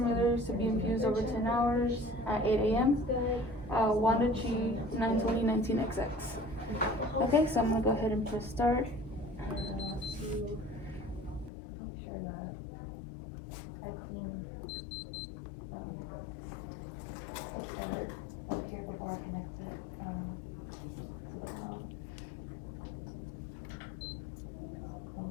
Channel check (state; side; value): drops out; right; at 11.5 s